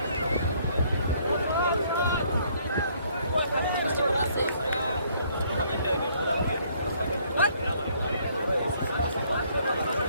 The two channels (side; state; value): both; inverted; correlation -0.65